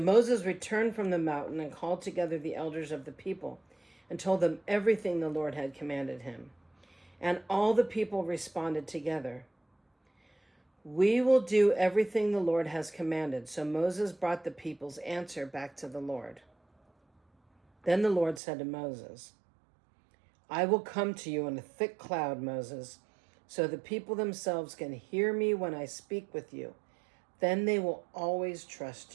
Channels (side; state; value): left; drops out; at 18.4 s